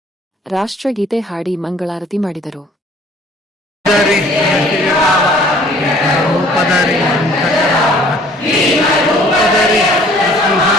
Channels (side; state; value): both; normal; correlation 0.54